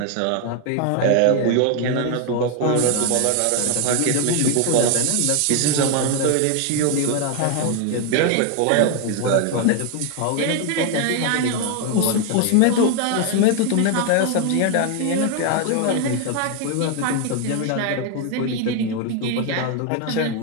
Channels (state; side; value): different; both; correlation 0.01